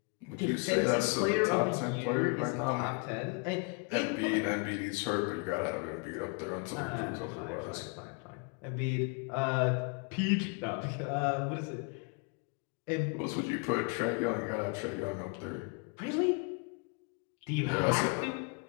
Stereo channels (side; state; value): right; quieter; 33.6 dB